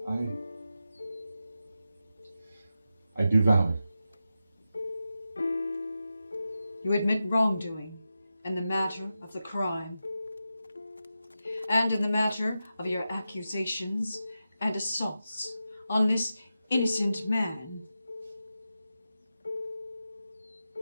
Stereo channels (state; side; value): inverted; both; correlation -0.90